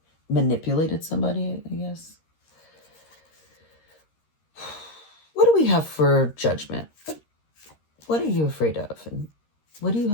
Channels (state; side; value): late; right; 13 ms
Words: manipulated somebody, I guess. What do we have for judgment? What are you afraid of? And what do you